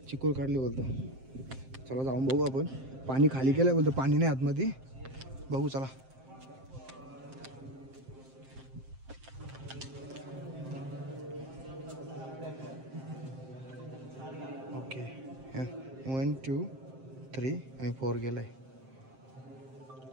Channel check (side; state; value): left; late; 7.6 ms